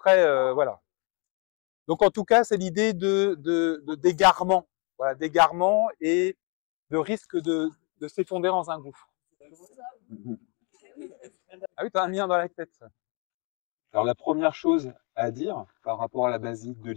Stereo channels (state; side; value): quieter; right; 34.5 dB